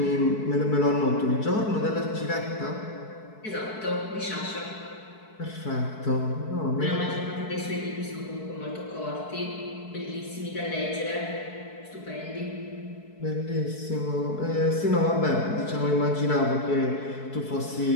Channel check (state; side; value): late; right; 4.6 ms